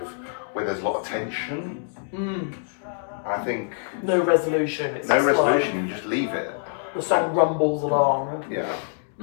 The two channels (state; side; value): silent; right; digital silence